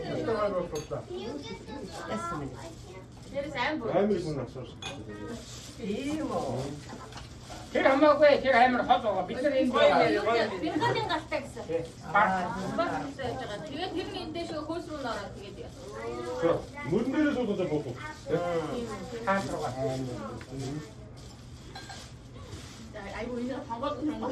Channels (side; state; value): both; identical; correlation 1.00